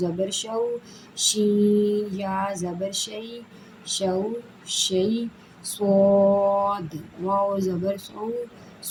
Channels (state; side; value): identical; both; correlation 1.00